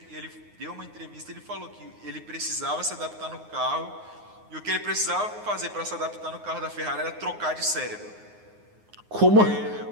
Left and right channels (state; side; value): late; left; 9.6 ms